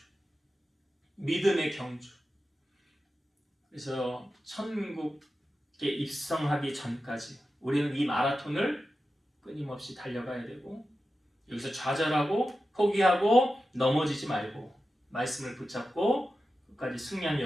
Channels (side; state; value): both; normal; correlation 0.92